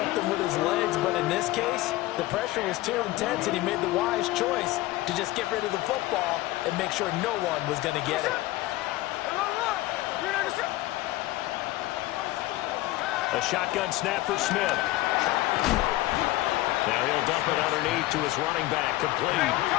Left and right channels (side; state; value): right; quieter; 17.7 dB